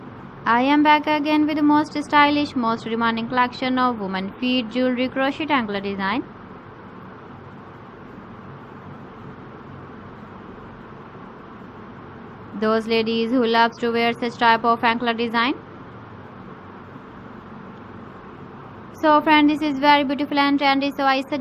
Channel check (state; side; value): identical; both; correlation 1.00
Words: I am back again with the most stylish, most demanding collection of women feet jewelry crochet angler design. Those ladies who loves to wear such type of anklet design. So friend, this is very beautiful and trendy, so I